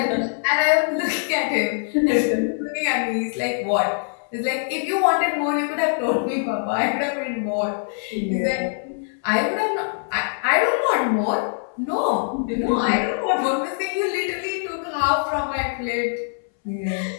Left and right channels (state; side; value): silent; right; 62 dB below the other